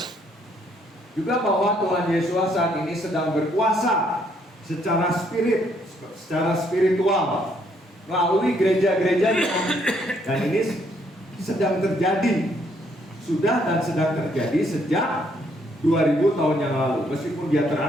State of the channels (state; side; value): normal; both; correlation 0.69